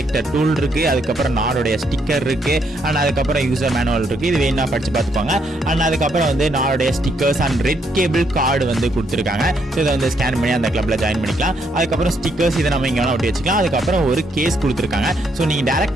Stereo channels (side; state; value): both; normal; correlation 0.73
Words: டூல் இருக்கு, அதுக்கப்புறம் நாடோடைய ஸ்டிக்கர் இருக்கு, அண்ட் அதுக்கப்புறம் யூசர் மேனுவல் இருக்கு. இது வேணா படிச்சு பார்த்துப்பாங்க. அண்ட் அதுக்கப்புறம் வந்து நாடோடைய stickers and red cable cord வந்து கொடுத்துருக்காங்க. ஸோ இதை வந்து ஸ்கேன் பண்ணி அந்த கிளப்ல ஜாயின் பண்ணிக்கலாம். அதுக்கப்புறம் ஸ்டிக்கர்ஸ் இதை நம்ம இங்கே வேணா ஒட்டி வச்சுக்கலாம். அதுக்கப்புறம் ஒரு கேஸ் கொடுத்துருக்காங்க. ஸோ நீங்கள்